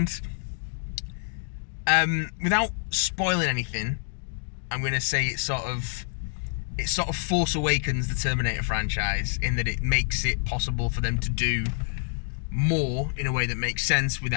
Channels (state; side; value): silent; right; digital silence